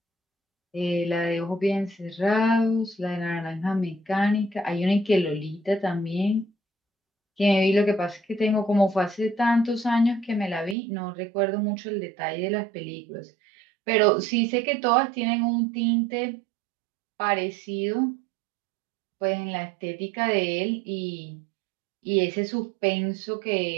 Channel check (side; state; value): left; drops out; at 10.8 s